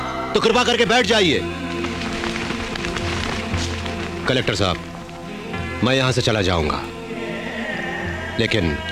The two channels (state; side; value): identical; both; correlation 1.00